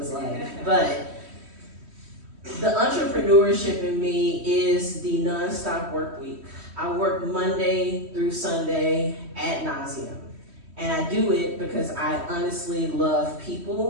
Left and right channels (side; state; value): left; late; 3.1 ms